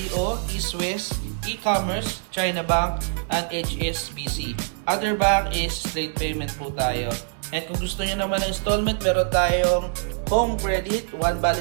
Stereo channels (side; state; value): left; silent; digital silence